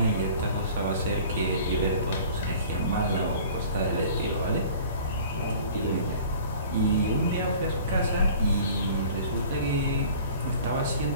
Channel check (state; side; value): inverted; both; correlation -0.46